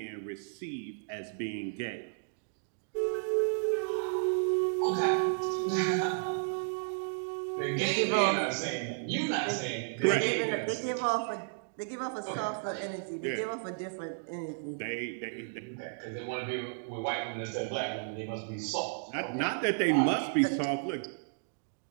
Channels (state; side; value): silent; left; digital silence